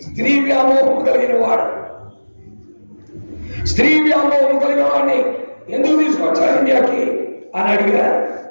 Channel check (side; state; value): both; inverted; correlation -1.00